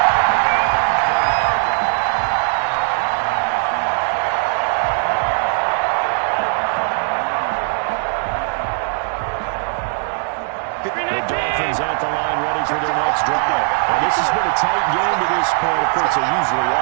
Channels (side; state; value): left; silent; 56 dB below the other